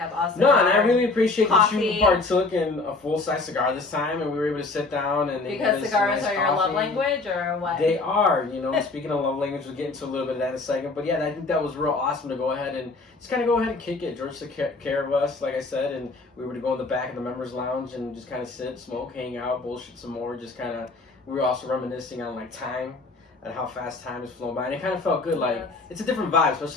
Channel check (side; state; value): right; quieter; 3.6 dB